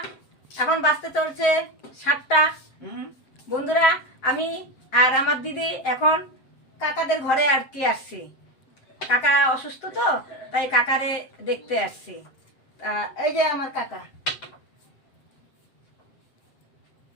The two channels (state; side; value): late; right; 7.7 ms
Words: এখন বাজতে চলছে 7টা। বন্ধুরা, আমি আর আমার দিদি এখন কাকাদের ঘরে আর কি আসছি। কাকা অসুস্থ তো, তাই কাকারে দেখতে আসছি। এই যে আমার কাকা,